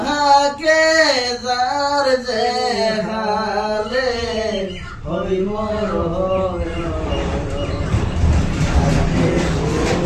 যার যে হালে হই মোর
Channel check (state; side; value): identical; both; correlation 1.00